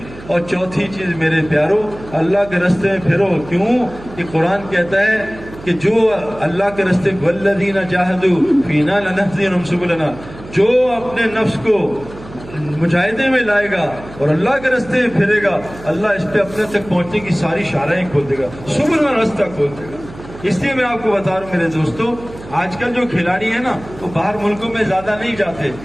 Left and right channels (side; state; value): right; noise; hum, 17 dB below the sound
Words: اور چوتھی چیز میرے پیارو، اللہ کے راستے میں پھرو۔ کیوں کہ قرآن کہتا ہے کہ جو اللہ کے راستے والذین جاہدوا فینا لنہدینہم سبلنا، جو اپنے نفس کو مجاہدے میں لائے گا اور اللہ کے راستے میں پھرے گا، اللہ اس پہ اپنے تک پہنچنے کی ساری شاہراہیں کھول دے گا، سبل میں راستہ کھول دے گا۔ اس لیے میں آپ کو بتا رہا ہوں میرے دوستو، آج کل جو کھلاڑی ہیں نا وہ باہر ملکوں میں زیادہ نہیں جاتے،